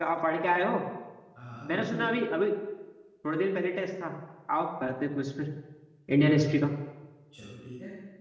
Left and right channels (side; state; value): both; identical; correlation 1.00